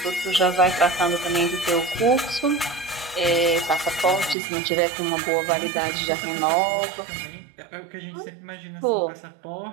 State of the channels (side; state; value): left; drops out; at 4.4 s